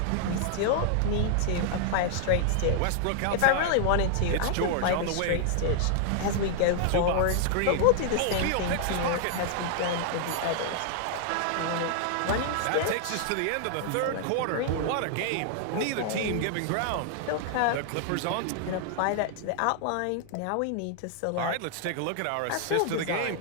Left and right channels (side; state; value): both; different; correlation -0.01